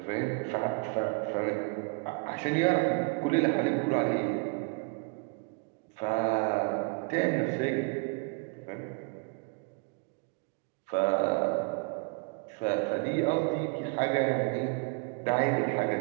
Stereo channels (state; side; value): quieter; left; 31.7 dB